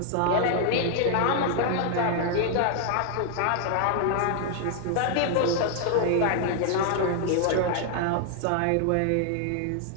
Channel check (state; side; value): different; both; correlation 0.00